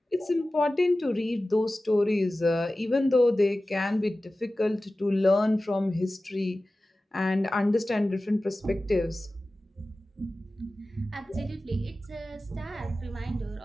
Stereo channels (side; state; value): both; normal; correlation 0.96